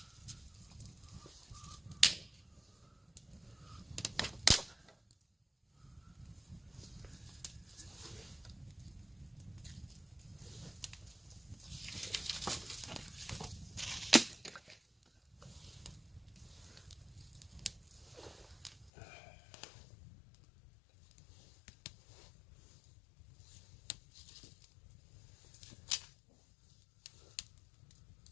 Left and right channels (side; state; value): right; drops out; at 18.9 s